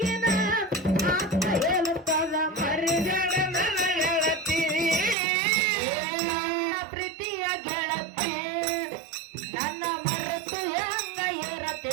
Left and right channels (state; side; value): drops out; left; at 5.2 s